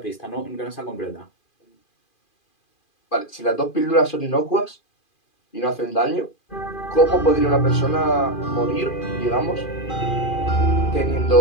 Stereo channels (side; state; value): right; late; 2.4 ms